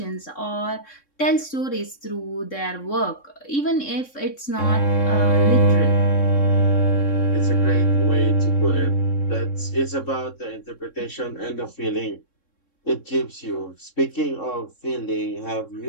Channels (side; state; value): right; late; 3.6 ms